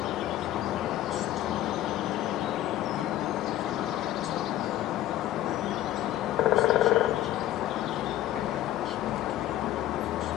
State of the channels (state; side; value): quieter; right; 13.6 dB